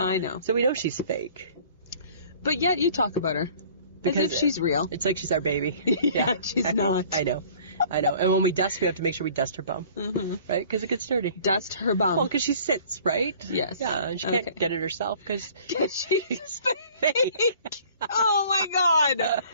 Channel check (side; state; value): both; inverted; correlation -0.51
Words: know. So we know she's fake. But yet you talk about her. Because as if she's real. It's like she's our baby. Yeah, she's not. I know. And when we dust, we have to make sure we dust her bum. Mm-hmm. Right? Because it gets dirty. Dust her bum. Well, because she sits, right? Yes. Yeah, and she can't get it herself because she's fake. Oh my